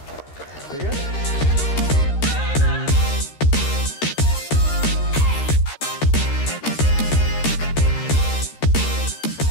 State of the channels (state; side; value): late; right; 13 ms